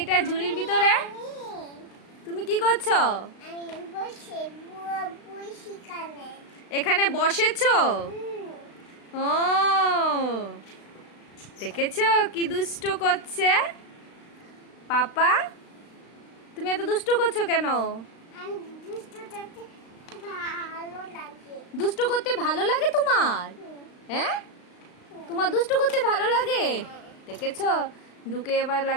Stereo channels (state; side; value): late; right; 35 ms